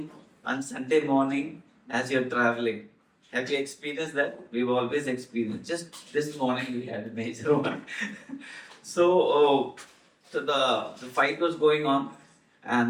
on Sunday morning as you're traveling. Have you experienced that? We've always experienced. Just this morning we had a major one. So the fight was going on,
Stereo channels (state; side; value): identical; both; correlation 1.00